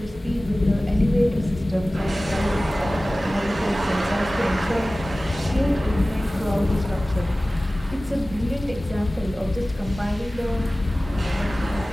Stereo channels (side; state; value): both; normal; correlation 0.97